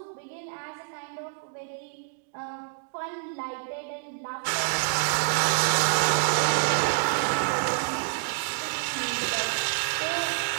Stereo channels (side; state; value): left; silent; digital silence